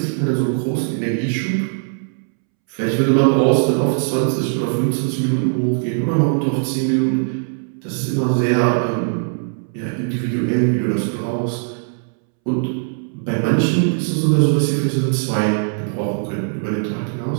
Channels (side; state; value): left; silent; 66 dB below the other